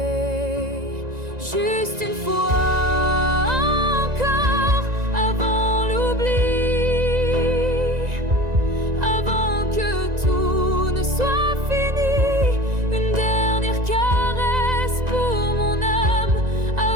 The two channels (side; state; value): left; late; 1.9 ms